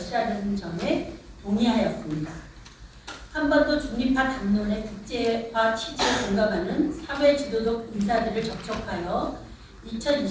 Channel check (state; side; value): identical; both; correlation 1.00